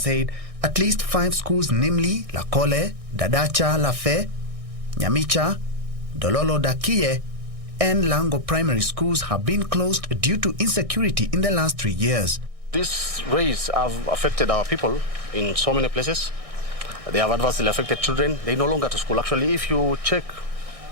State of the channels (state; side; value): late; left; 1.6 ms